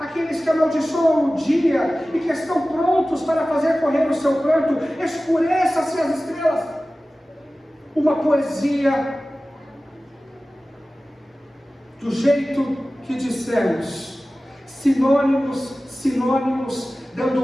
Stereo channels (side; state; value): both; normal; correlation 0.96